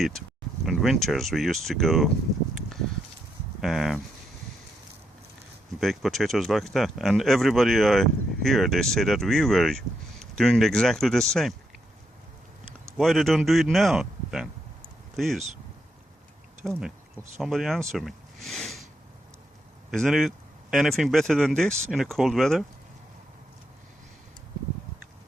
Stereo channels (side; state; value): both; normal; correlation 0.79